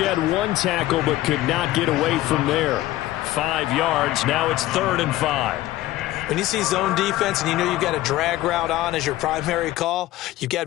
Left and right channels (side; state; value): right; quieter; 16.0 dB